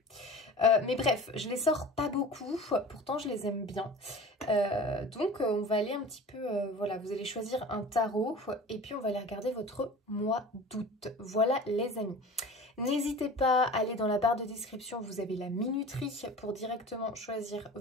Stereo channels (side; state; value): both; normal; correlation 0.38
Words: Mais bref, je les sors pas beaucoup, pourtant je les aime bien. Donc on va aller un petit peu... voilà, vous allez choisir un tarot et puis on va aller regarder votre mois d'août. Voilà les amis. N'hésitez pas à aller dans la barre de description, vous avez la minuterie pour directement choisir